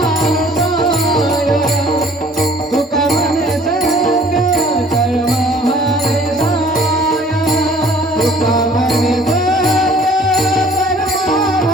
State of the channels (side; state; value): both; normal; correlation 0.54